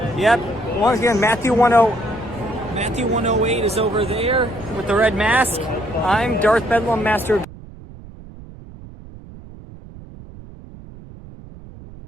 Yep. Once again, Matthew 108 is over there with the red mask. I'm Darth Bedlam, Master of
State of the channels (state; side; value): noise; right; rumble, 17 dB below the sound